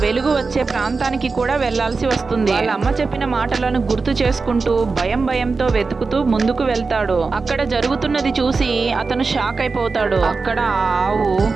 వెలుగు వచ్చే ప్రాంతానికి కూడా వెళ్లాల్సి వస్తుంది. వాళ్ళ అమ్మ చెప్పిన మాటలను గుర్తు చేసుకుంటూ భయంతో వెతుకుతూ ముందుకు వెళ్తాడు. అక్కడ జరుగుతున్నది చూసి అతను షాక్ అయిపోతాడు. అక్కడ ఆ ఆవు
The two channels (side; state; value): left; quieter; 4.3 dB